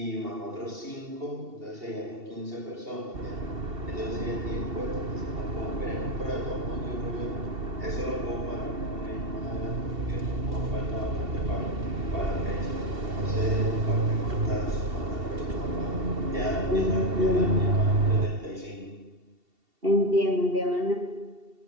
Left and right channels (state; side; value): late; left; 2.7 ms